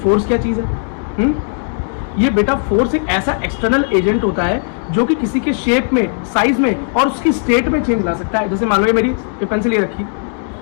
क्या चीज़ है, ये बेटा फोर्स एक ऐसा एक्सटर्नल एजेंट होता है जो कि किसी के शेप में, साइज में और उसकी स्टेट में चेंज ला सकता है। जैसे मान लो ये मेरी पेंसिल ये रखी,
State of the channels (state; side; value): silent; right; 63 dB below the other